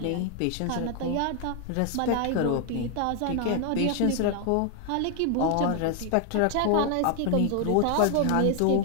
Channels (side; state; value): both; different; correlation 0.00